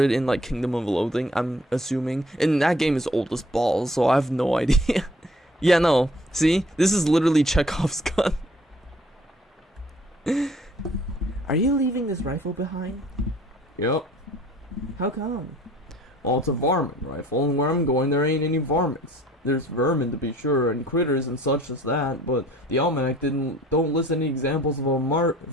in like Kingdom of Loathing, I'm assuming, and that game is old as balls, so I have no idea. Yeah, no, see, this is literally Chekhov's gun. Are you leaving this rifle behind? Yep. How come? Well, it's a varmint rifle, and where I'm going there ain't any varmints. There's vermin to be sure, and critters and such as that, but the almanac don't list any examples of a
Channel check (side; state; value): both; normal; correlation 0.54